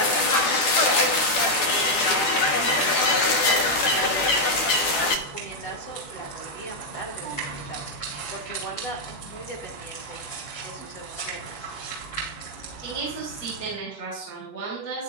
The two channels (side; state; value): right; late; 11 ms